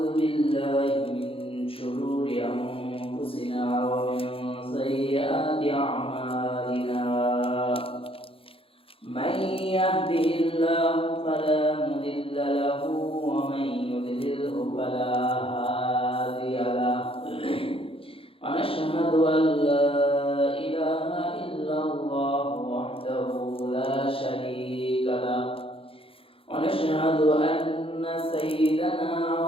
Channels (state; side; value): late; right; 0.27 ms